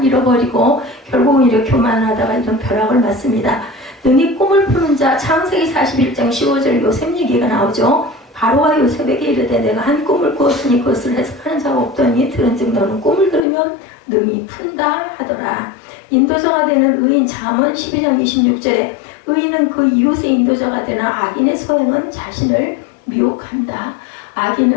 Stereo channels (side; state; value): right; drops out; at 13.4 s